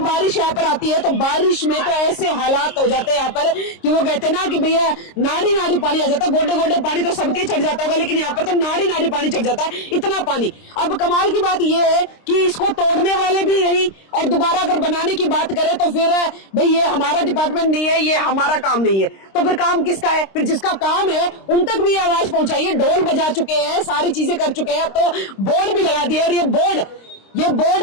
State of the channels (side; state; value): right; late; 26 ms